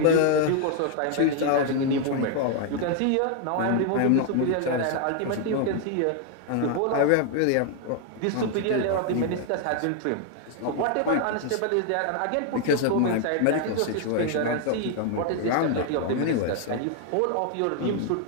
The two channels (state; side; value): different; both; correlation 0.00